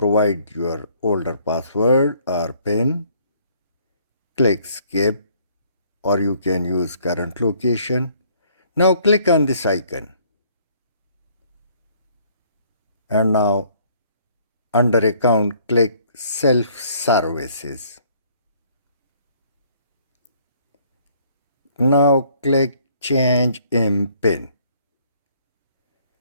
your older password or PIN. Click Skip or you can use current location. Now click on this icon. And now under account click Self-Services. Now click Change Mpin.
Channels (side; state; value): both; inverted; correlation -0.62